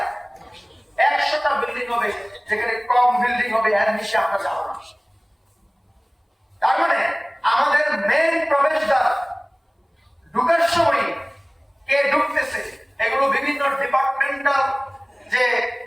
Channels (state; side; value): identical; both; correlation 1.00